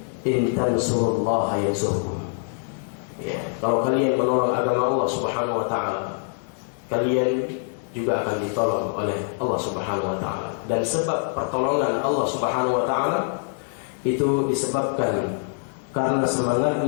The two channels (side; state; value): right; silent; digital silence